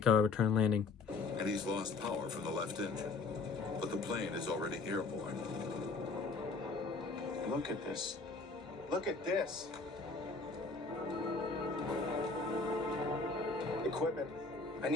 landing. And he's lost power from the left engine. But the plane is already airborne. Look at this. Look at this. Equipment. I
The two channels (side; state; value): right; quieter; 4.0 dB